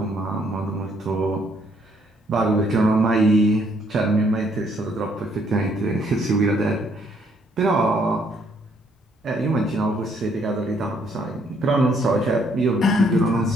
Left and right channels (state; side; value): normal; both; correlation 0.68